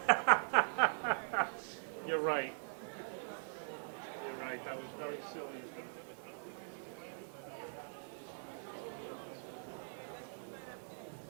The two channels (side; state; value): left; silent; digital silence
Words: You're right. You're right. That was very silly. I don't think I need to buy any, but